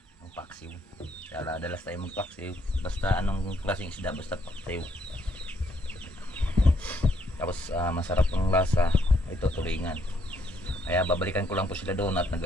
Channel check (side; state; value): both; normal; correlation 0.71